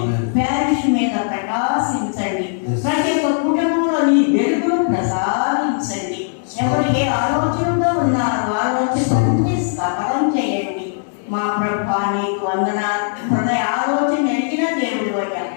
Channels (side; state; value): right; silent; digital silence